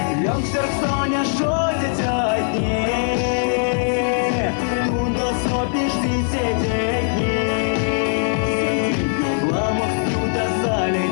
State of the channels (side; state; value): right; silent; 62 dB below the other